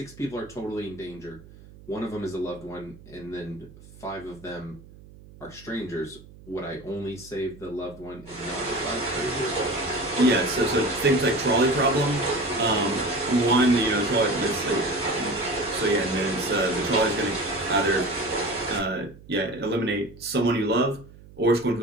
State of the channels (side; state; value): right; noise; hum, 21 dB below the sound